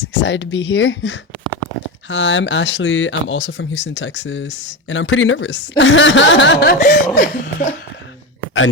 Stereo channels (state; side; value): normal; both; correlation 0.19